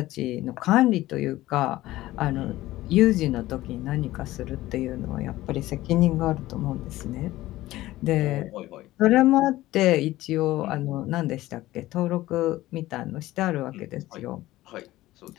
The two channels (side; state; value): right; quieter; 16.6 dB